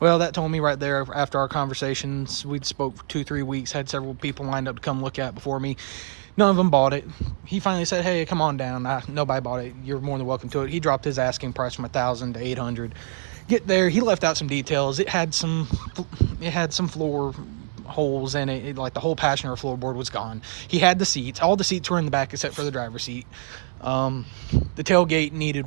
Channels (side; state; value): left; silent; 62 dB below the other